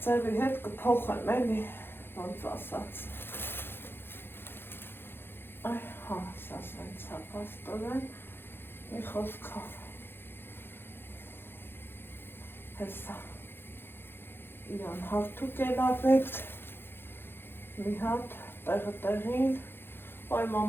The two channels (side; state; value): right; late; 0.10 ms